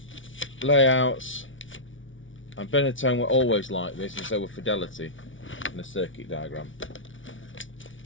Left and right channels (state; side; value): late; right; 0.56 ms